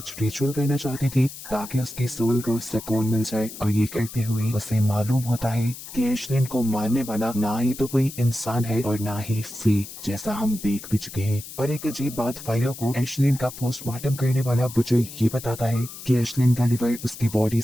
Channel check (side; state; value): left; noise; hiss, 13 dB below the sound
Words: रिचुअल करना चाहती थी ताकि उसकी सोल को सुकून मिल जाए और ये करते हुए उसे मालूम होता है कि एश्लिन को मारने वाला ना ही तो कोई इंसान है और ना ही फी जैसा हम देख भी चुके हैं। और एक अजीब बात फाइलो को एश्लिन का पोस्टमार्टम करने वाला बुचर ये बताता है कि एश्लिन का लिवर उसकी बॉडी